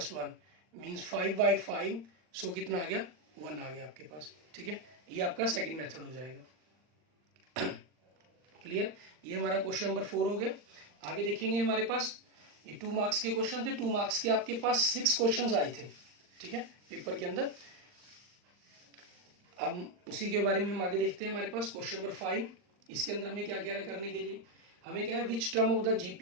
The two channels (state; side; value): late; left; 39 ms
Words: 1 मीन्स 5/5, सो कितना आ गया 1 आ गया आपके पास, ठीक है। ये आपका सेकंड मेथड हो जाएगा। क्लियर, ये हमारा क्वेश्चन नंबर 4 हो गया। आगे देखेंगे हमारे पास ये 2 मार्क्स के क्वेश्चन थे। 2 मार्क्स के आपके पास 6 क्वेश्चंस आए थे, ठीक है, पेपर के अंदर। अब उसी के बारे में हम आगे देखते हैं। हमारे पास क्वेश्चन नंबर 5, इसके अंदर हमें क्या कह रहा है करने के लिए, हमें क्या है which term of the